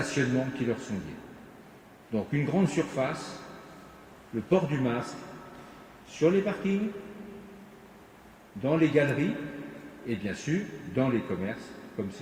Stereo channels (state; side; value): identical; both; correlation 1.00